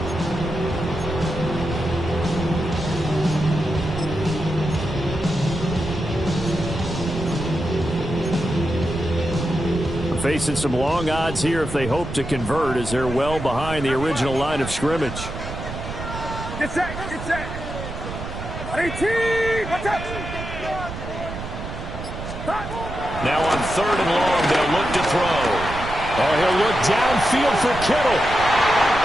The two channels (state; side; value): noise; right; rumble, 8 dB below the sound